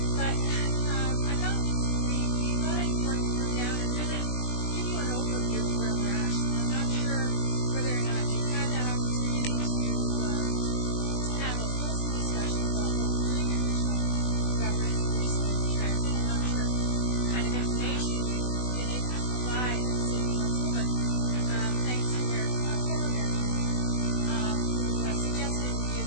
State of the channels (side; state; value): right; late; 20 ms